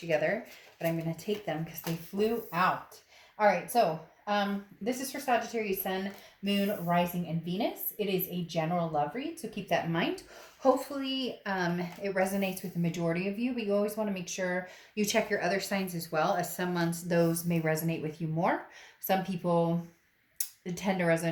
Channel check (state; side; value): identical; both; correlation 1.00